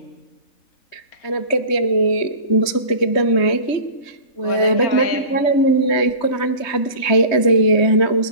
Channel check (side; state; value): right; late; 3.2 ms